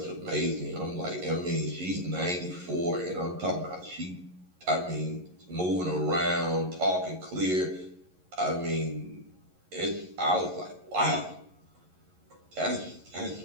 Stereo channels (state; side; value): late; left; 11 ms